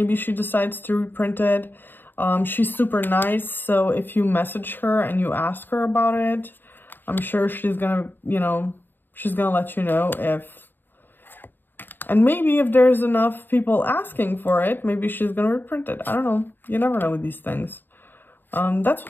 she decides to reprint it. She's super nice, so if you message her and you ask her about it, I'm sure she's gonna, you know, she's gonna let you know if And maybe if there's enough people asking for it, maybe she's gonna reprint it. I don't know. You never know with these things. That's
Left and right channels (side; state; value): right; late; 0.094 ms